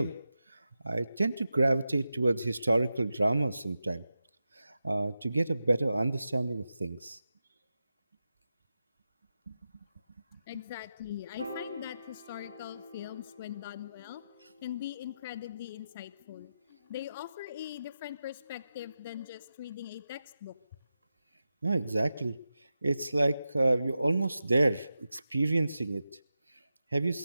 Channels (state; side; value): inverted; both; correlation -0.91